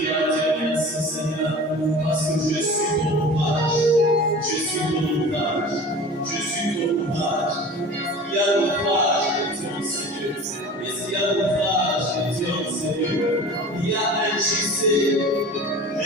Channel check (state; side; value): normal; both; correlation 0.38